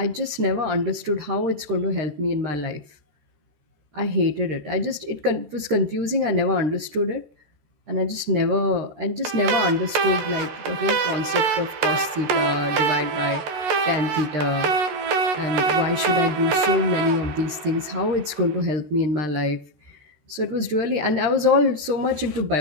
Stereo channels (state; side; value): late; left; 13 ms